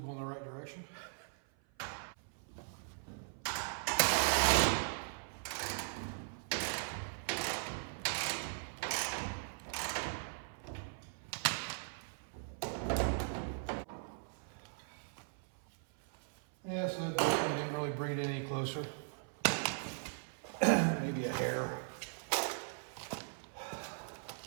in the right direction. Yeah, so that didn't really bring it any closer. Maybe a hair.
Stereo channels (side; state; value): left; silent; 52 dB below the other